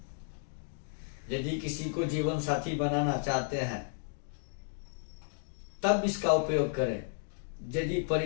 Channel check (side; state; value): right; silent; digital silence